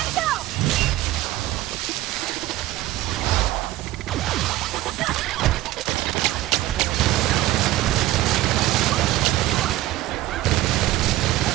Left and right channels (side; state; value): left; quieter; 16.1 dB